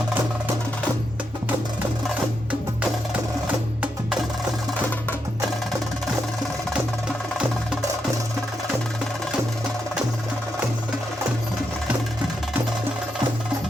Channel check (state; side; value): normal; both; correlation 0.83